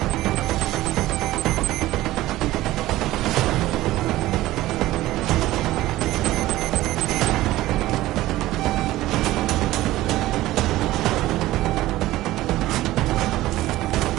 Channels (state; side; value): quieter; left; 16.4 dB